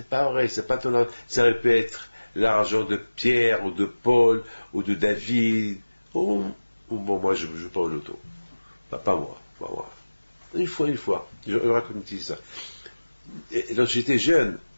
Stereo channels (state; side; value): inverted; both; correlation -1.00